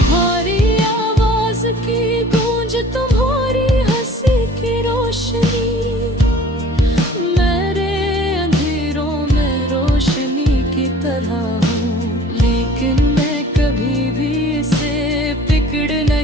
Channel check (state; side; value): normal; both; correlation 0.48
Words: आवाज की गूंज, तुम्हारी हंसी की रोशनी मेरे अंधेरों में रोशनी की तरह हूँ। लेकिन मैं कभी भी इसे पकड़